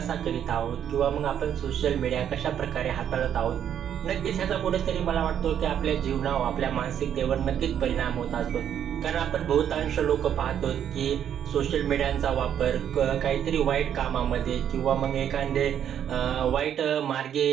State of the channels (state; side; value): quieter; left; 9.4 dB